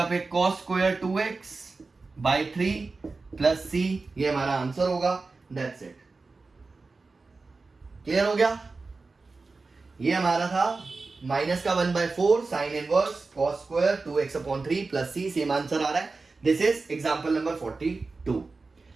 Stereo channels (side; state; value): left; quieter; 3.9 dB